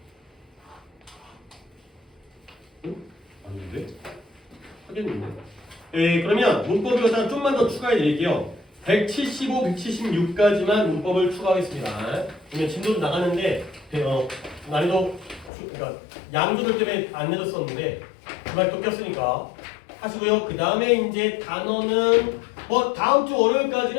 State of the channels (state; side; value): drops out; right; at 15.5 s